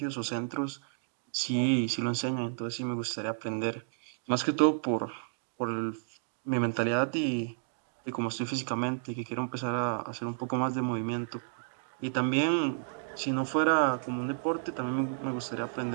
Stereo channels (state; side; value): silent; left; digital silence